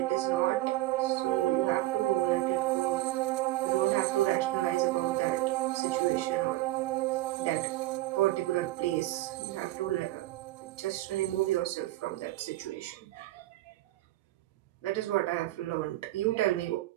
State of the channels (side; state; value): left; quieter; 16.7 dB